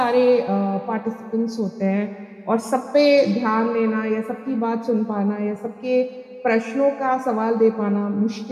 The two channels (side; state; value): both; identical; correlation 1.00